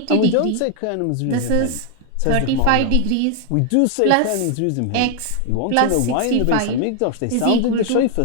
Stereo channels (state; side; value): different; both; correlation 0.00